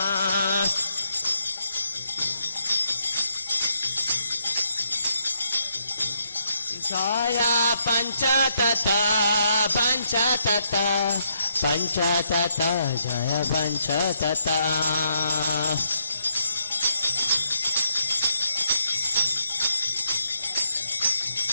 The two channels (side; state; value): both; inverted; correlation -0.77